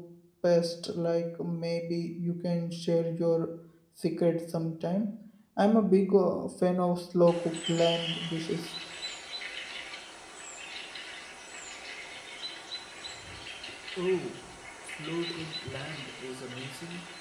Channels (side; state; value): both; identical; correlation 1.00